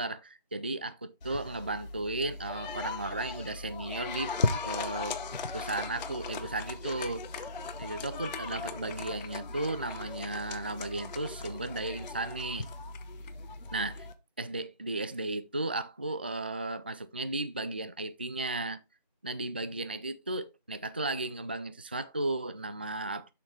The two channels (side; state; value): both; inverted; correlation -0.49